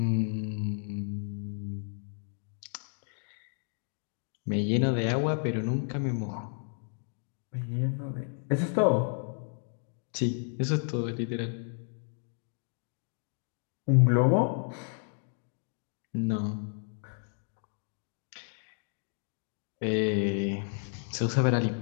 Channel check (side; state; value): right; silent; 56 dB below the other